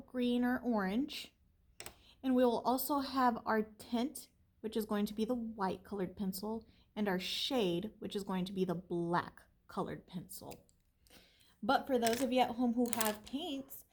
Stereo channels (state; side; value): identical; both; correlation 1.00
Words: green, or orange. And we will also have our tint, which is going to be the white colored pencil, and our shade, which is going to be the black colored pencil. But for those of you at home who have paints,